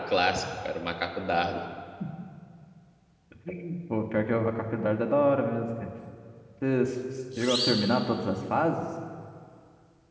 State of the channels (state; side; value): identical; both; correlation 1.00